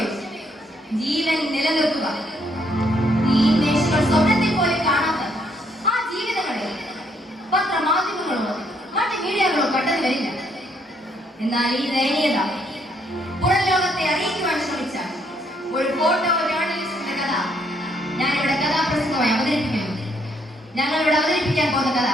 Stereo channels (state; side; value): normal; both; correlation 0.71